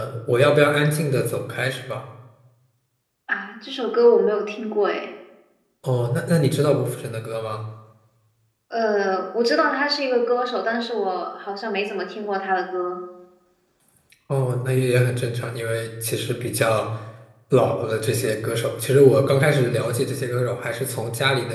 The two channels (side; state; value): both; identical; correlation 1.00